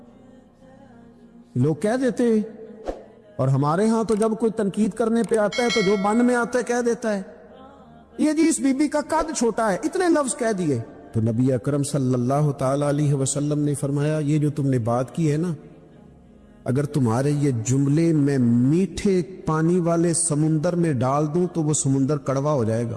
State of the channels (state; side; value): identical; both; correlation 1.00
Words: لوگ کہہ دیتے ہیں، اور ہمارے ہاں تو جب کوئی تنقید کرنے پہ آتا ہے تو جو من میں آتا ہے کہہ دیتا ہے، یہ جی اس بی بی کا قد چھوٹا ہے، اتنے لفظ کہہ دیے۔ تو نبی اکرم صلی اللہ تعالی علیہ وسلم نے فرمایا یہ جو تم نے بات کی ہے نا، اگر تمہارے یہ جملے میں میٹھے پانی والے سمندر میں ڈال دوں تو وہ سمندر کڑوا ہو جائے گا۔